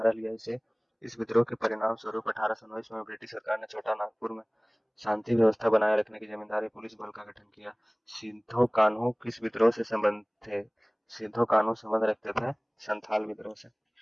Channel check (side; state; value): both; identical; correlation 1.00